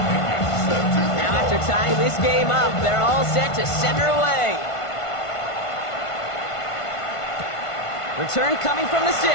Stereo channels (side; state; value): right; late; 1.5 ms